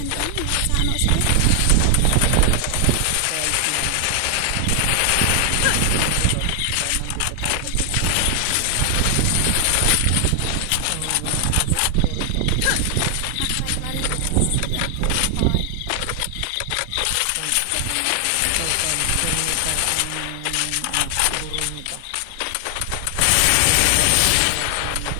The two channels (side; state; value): both; different; correlation 0.00